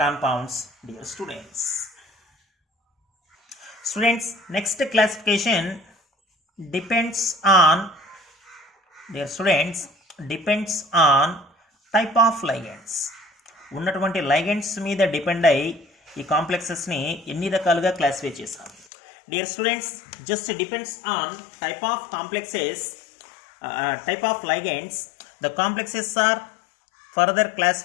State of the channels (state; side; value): drops out; right; at 18.9 s